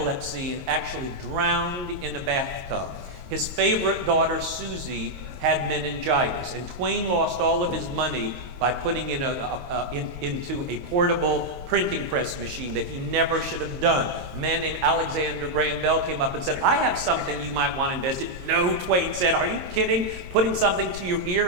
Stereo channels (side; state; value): left; late; 22 ms